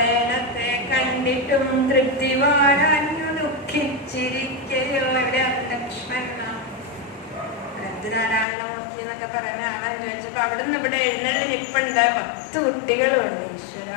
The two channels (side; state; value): right; drops out; at 8.5 s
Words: കണ്ടിട്ടും തൃപ്തി വാഴാഞ്ഞു ദുഃഖിച്ചിരിക്കയോ. എവിടെയാണ് കൃഷ്ണൻ? നാരായണമൂർത്തി എന്നൊക്കെ പറയുന്ന ആളെന്ന് ചോദിച്ചപ്പോ അവിടുന്ന് ഇവിടെ എഴുന്നള്ളിനിപ്പുണ്ട് 10 കുട്ടികളുണ്ട്. ഈശ്വര